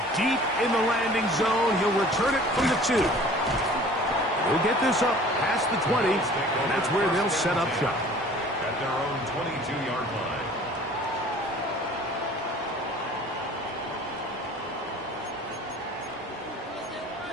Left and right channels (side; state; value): both; normal; correlation 0.48